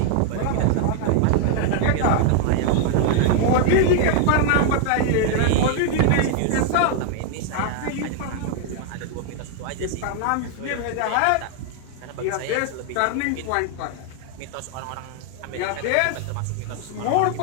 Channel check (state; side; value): different; both; correlation 0.00